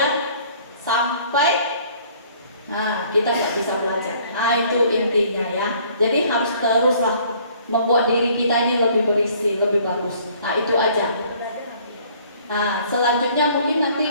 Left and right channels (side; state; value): both; inverted; correlation -0.57